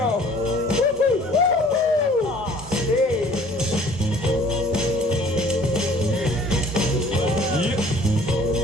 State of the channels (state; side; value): normal; both; correlation 0.53